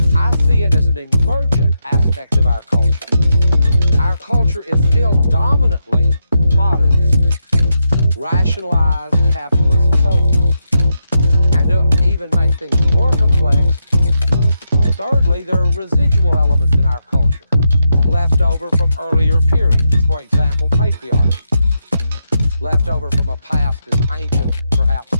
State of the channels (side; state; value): both; inverted; correlation -0.84